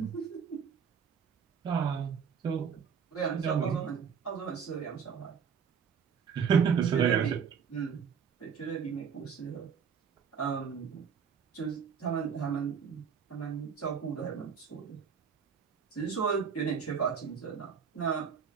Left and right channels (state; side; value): quieter; left; 6.7 dB